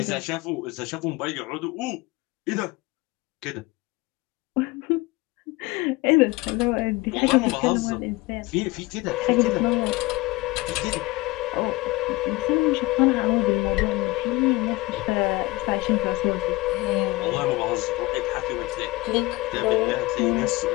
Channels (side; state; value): right; quieter; 21.8 dB